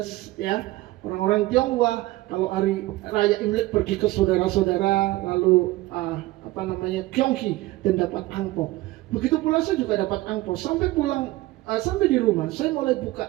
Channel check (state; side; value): quieter; left; 18.6 dB